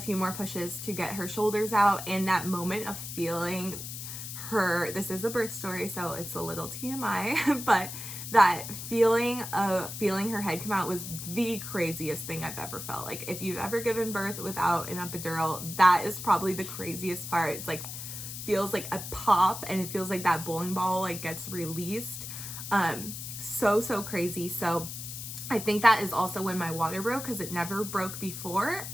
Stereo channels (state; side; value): noise; left; hiss, 8 dB below the sound